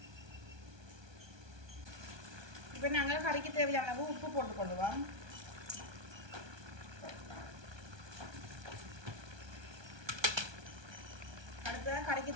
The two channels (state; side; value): late; left; 1.2 ms